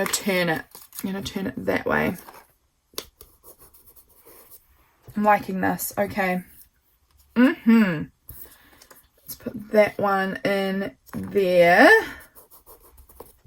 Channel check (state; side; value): identical; both; correlation 1.00